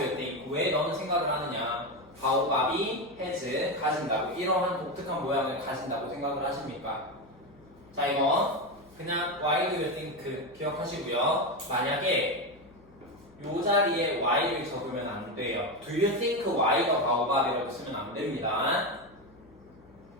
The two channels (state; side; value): noise; left; hum, 26 dB below the sound